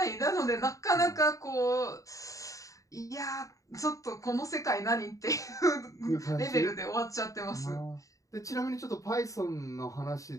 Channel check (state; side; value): late; right; 0.16 ms